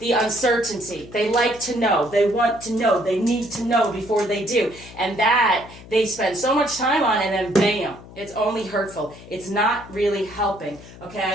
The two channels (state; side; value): noise; left; hum, 18 dB below the sound